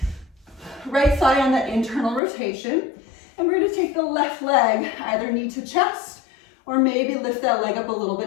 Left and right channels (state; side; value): drops out; right; at 2.2 s